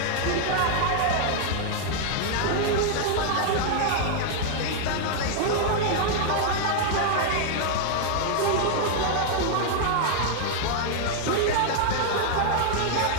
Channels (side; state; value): both; different; correlation 0.00